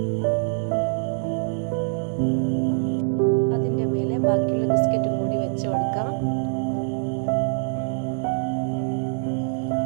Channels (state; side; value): silent; left; 62 dB below the other